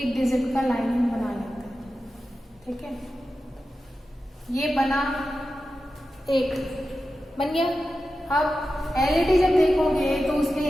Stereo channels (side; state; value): both; normal; correlation 0.92